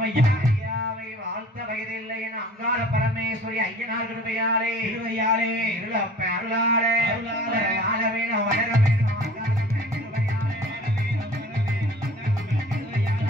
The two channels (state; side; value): normal; both; correlation 0.46